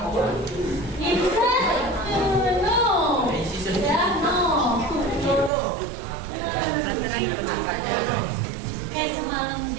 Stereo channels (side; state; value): left; drops out; at 5.5 s